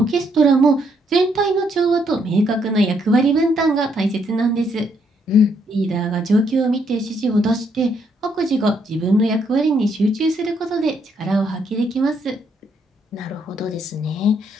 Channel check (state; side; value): normal; both; correlation 0.72